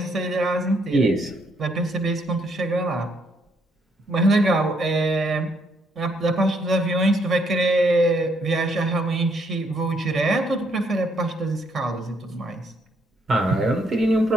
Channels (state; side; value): normal; both; correlation 0.72